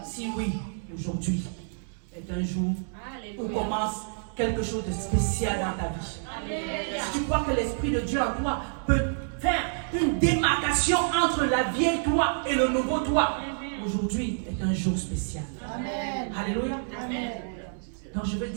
Si oui, aujourd'hui est un jour où commence quelque chose de spécial dans ta vie. Si tu crois que l'Esprit de Dieu en toi peut faire une démarcation entre la vieille toi et le nouveau toi, aujourd'hui est un jour spécial. Amen. Alléluia. Amen. Donc je veux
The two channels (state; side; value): silent; left; 59 dB below the other